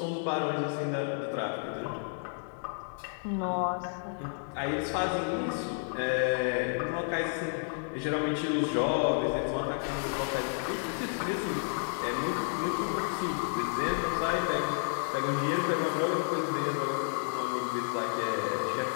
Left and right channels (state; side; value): silent; right; 57 dB below the other